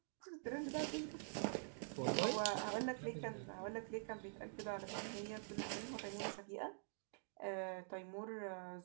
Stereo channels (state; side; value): silent; left; digital silence